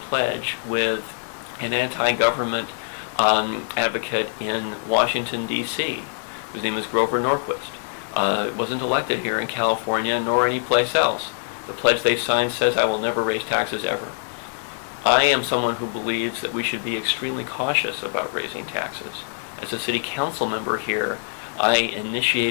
with an anti-government advocate in Washington, D.C., whose name is Grover Norquist. Wasn't elected here in California nor any place else. The pledge they signed says, "I will never raise taxes ever." I am someone who believes that we should be extremely cautious about raising taxes. As a city council member here, I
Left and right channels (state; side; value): silent; right; 63 dB below the other